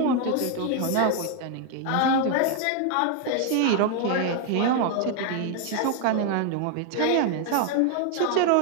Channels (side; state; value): both; different; correlation 0.00